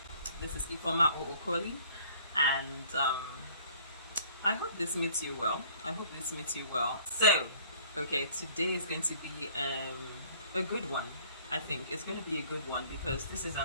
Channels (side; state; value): both; inverted; correlation -0.55